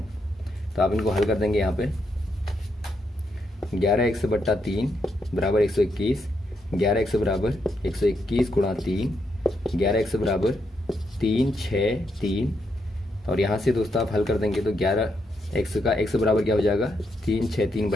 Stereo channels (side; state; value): both; normal; correlation 0.79